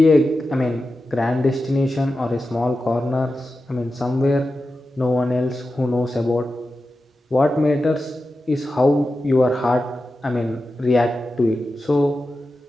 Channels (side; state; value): both; normal; correlation 0.92